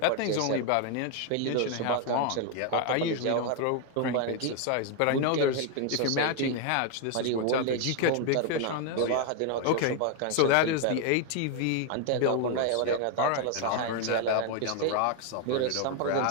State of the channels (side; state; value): both; different; correlation 0.01